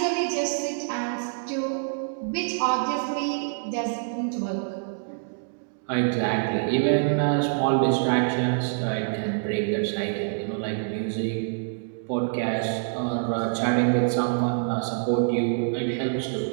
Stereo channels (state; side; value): silent; left; digital silence